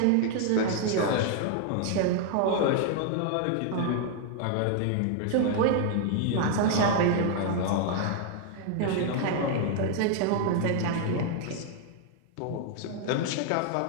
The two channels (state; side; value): different; both; correlation 0.00